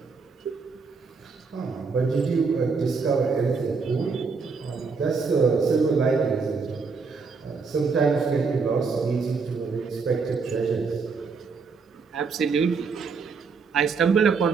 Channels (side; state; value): left; quieter; 4.9 dB